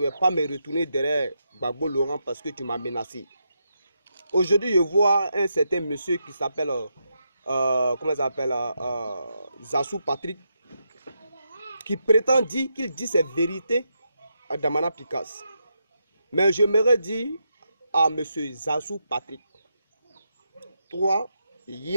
vais pas me retourner derrière Gbagbo Laurent parce que tu m'as menacé. Aujourd'hui, je vois un certain monsieur qui s'appelle, comment il s'appelle, Zassou Patrick, qui prétend dire qu'il dit ses vérités à Damana Picasse. Mais je m'aurais dit à monsieur Zassou Patrick, toi,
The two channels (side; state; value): both; inverted; correlation -0.83